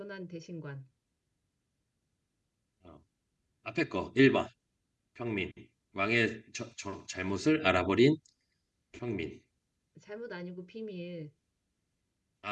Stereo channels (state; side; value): identical; both; correlation 1.00